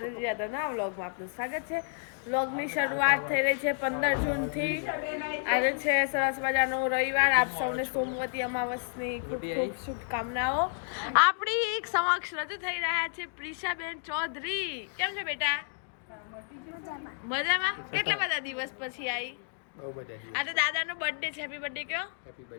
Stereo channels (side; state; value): right; silent; digital silence